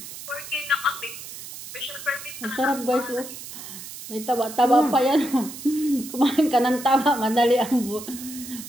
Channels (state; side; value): noise; right; hiss, 12 dB below the sound